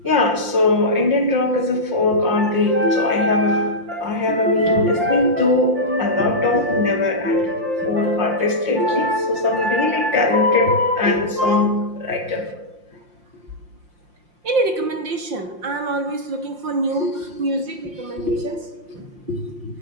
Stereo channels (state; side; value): late; left; 5.7 ms